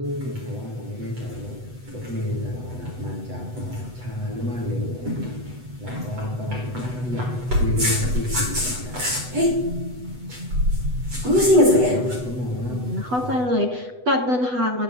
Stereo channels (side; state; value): left; late; 8.0 ms